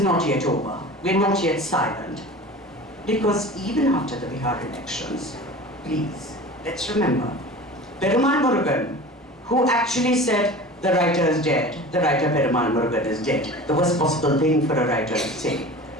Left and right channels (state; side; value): normal; both; correlation 0.37